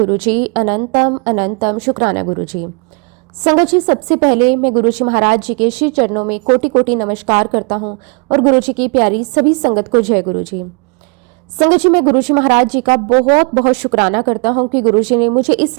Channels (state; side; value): quieter; left; 33.0 dB